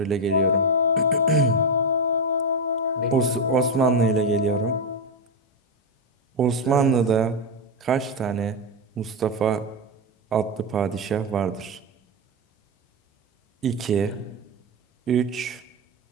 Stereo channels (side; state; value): both; normal; correlation 0.09